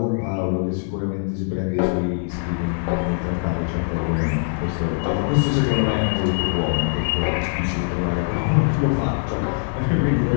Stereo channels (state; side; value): silent; right; digital silence